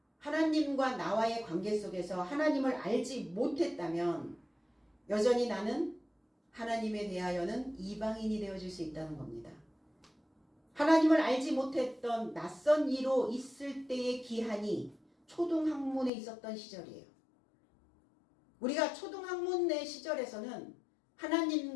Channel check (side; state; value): right; drops out; at 16.1 s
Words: 하나님과 나와의 관계 속에서 하나님을 알지 못했다면 여전히 나는 하나님에 대하여는 이방인이 되어질 수 있다는 겁니다. 하나님을 알지 못했던 낯선 이로 있을 때의 기한이 초등학문에 있었던 시절이에요. 우리가 초등학문의 시절에서는